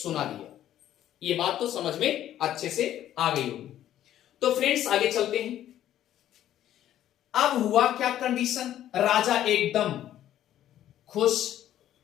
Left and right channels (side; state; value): right; quieter; 11.9 dB